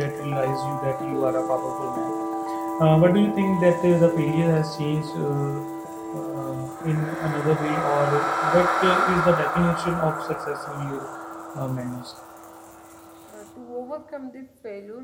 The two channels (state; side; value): identical; both; correlation 1.00